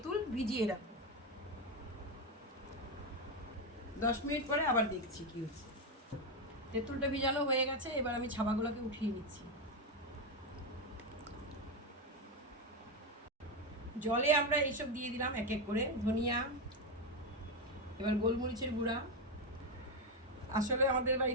ভিজিয়ে রাখবো। 10 মিনিট পরে আবার দেখছি কি হচ্ছে। তেঁতুলটা ভিজানো হয়ে গেছে, এবার আমি ছাবাগুলোকে উঠিয়ে নিচ্ছি। জলে আমরা এইসব দিয়ে দিলাম এক এক করে, ধনিয়া, এবার গোলমরিচের গুঁড়া। আসলে আমাদের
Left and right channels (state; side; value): normal; both; correlation 0.09